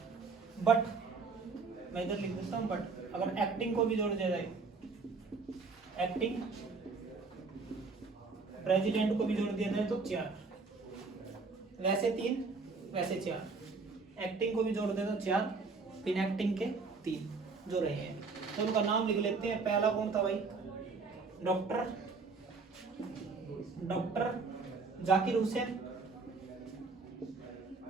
बट मैं इधर लिख देता हूँ, बट अगर एक्टिंग को भी जोड़ दिया जाए, एक्टिंग प्रेसिडेंट को भी जोड़ दिया जाए तो 4, वैसे 3, वैसे 4, एक्टिंग को भी जोड़ दे तो 4, बिन एक्टिंग के 3 जो रहे हैं। तो उनका नाम लिख लेते हैं। पहला कौन था भाई? डॉक्टर जाकिर हुसैन,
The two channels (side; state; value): left; quieter; 4.3 dB